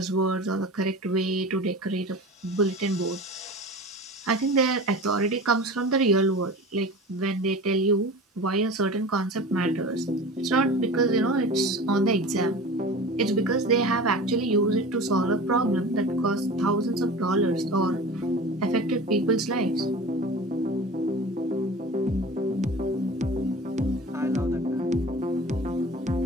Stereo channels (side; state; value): both; normal; correlation 0.36